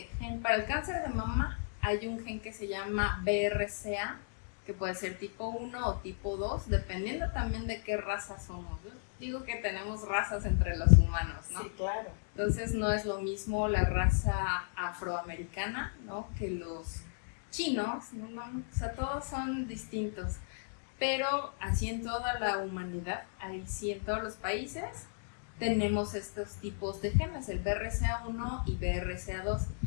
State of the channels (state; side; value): silent; right; digital silence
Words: gen. Para el cáncer de mama hay un gen que se llama BRCA, que puede ser tipo 1 o tipo 2, dependiendo también de qué raza somos. Yo digo que tenemos razas entre los humanos, ¿no? Sí, claro. Entonces no es lo mismo la raza afroamericana, ¿no?, que los chinos, ¿no? O sea, todos son distintos. Pero así en toda la humanidad, ahí sí en todos los países, tenemos estos tipos de genes, el BRCA1 y BRCA2,